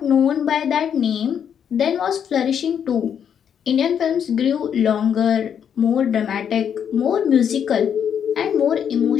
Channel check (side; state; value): right; quieter; 8.2 dB